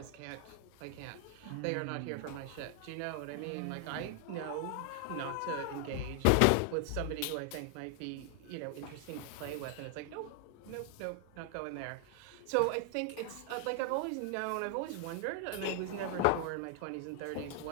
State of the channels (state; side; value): different; both; correlation 0.00